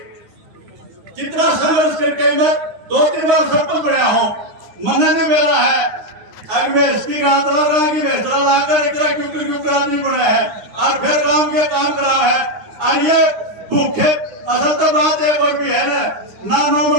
कितना संघर्ष करके मैं 2-3 बार सरपंच बना हूँ, मन नहीं मेरा है अगर मैं इसकी गातरा रहा कि बेहतरा लाकर इतना क्यों आदमी बना है और फिर काम के काम करा है। और ये भूखे असल तो बात एक और भी है ना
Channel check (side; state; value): left; late; 9.8 ms